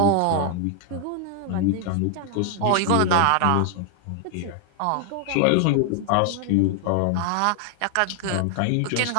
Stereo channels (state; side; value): different; both; correlation 0.00